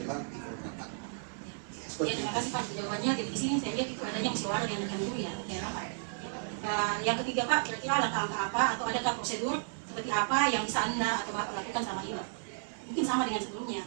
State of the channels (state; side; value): silent; left; digital silence